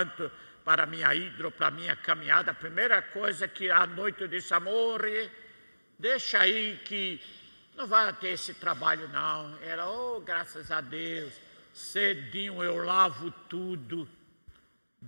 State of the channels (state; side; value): inverted; both; correlation -1.00